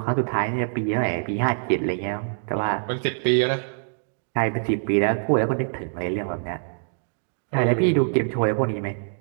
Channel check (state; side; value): silent; left; digital silence